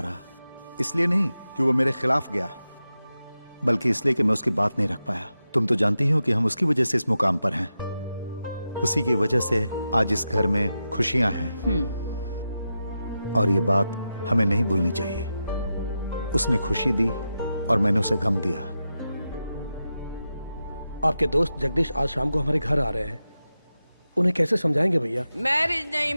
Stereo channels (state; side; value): inverted; both; correlation -0.90